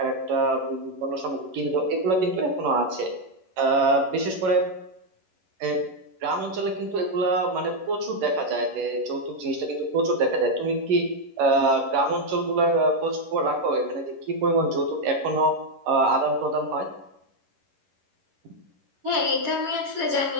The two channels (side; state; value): left; late; 11 ms